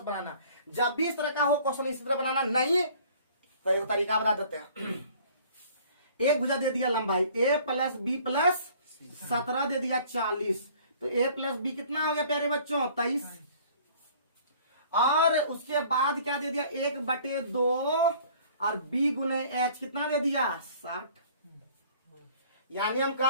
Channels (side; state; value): both; inverted; correlation -0.52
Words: बनाना। जब भी इस तरह का हो क्वेश्चन इसी तरह बनाना। नहीं तो एक तरीका बता देते हैं। एक भुजा दे दिया लंबाई a प्लस बी प्लस 17 दे दिया 40। तो a प्लस बी कितना हो गया प्यारे बच्चों? 23। और उसके बाद क्या दे दिया? 1/2 और b गुने h कितना दे दिया? 60। यानी हम